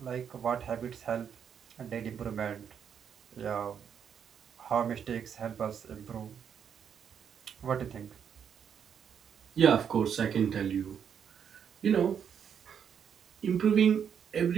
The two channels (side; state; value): left; quieter; 7.8 dB